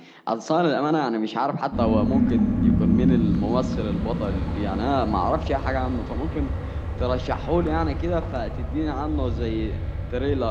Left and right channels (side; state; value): both; identical; correlation 1.00